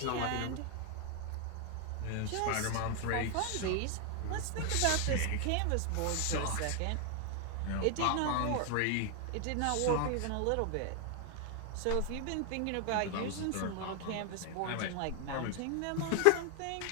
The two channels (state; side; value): different; both; correlation 0.00